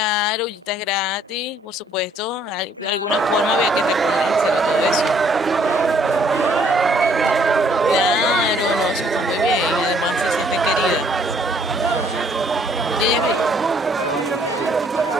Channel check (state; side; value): normal; both; correlation 0.63